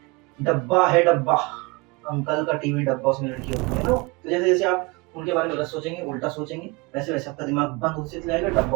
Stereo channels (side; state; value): left; quieter; 26.1 dB